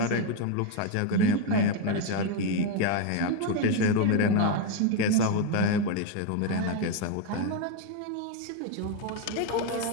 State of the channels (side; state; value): both; different; correlation 0.02